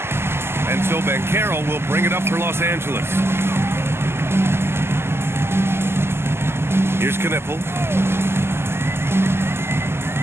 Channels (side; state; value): left; late; 0.12 ms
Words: And so Banchero will bring it up for Los Angeles. Here's Knipple.